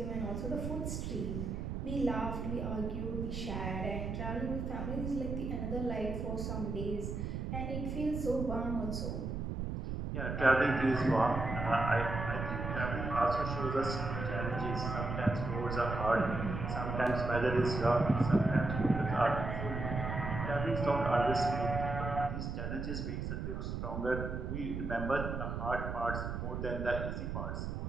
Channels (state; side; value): noise; right; rumble, 4 dB below the sound